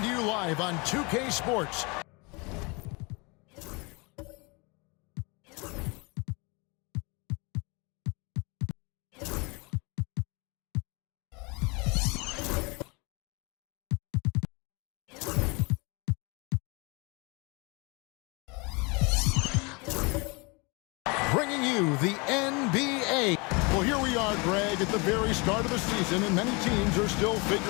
to you live on 2K Sports. Bringing you the NBA. Well, here we are, Greg, at the very start of the season, and many teams are still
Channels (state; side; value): quieter; right; 28.9 dB